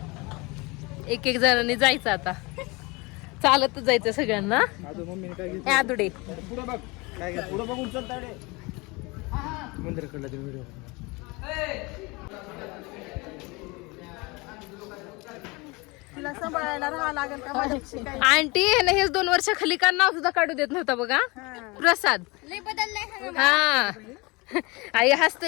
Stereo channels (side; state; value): right; quieter; 25.7 dB